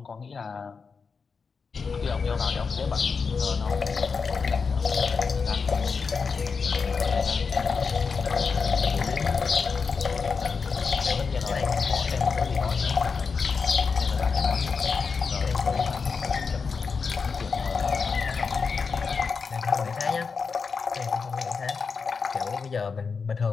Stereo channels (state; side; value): quieter; right; 5.2 dB